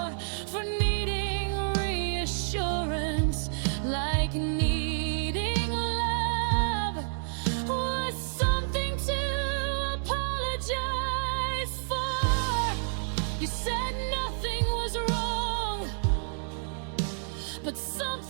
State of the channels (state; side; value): silent; left; digital silence